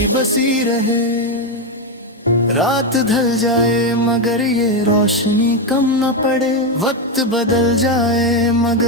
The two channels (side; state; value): both; normal; correlation 0.08